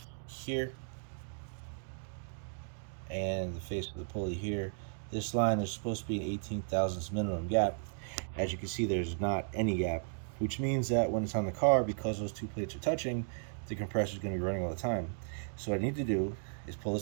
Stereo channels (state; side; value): silent; left; digital silence